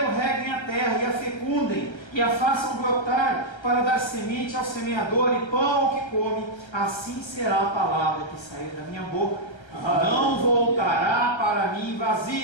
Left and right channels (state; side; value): late; right; 1.3 ms